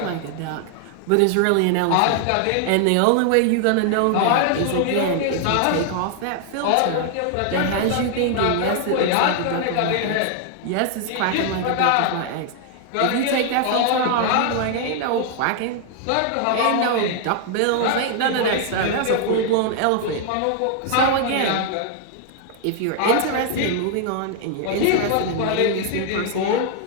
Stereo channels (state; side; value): different; both; correlation 0.00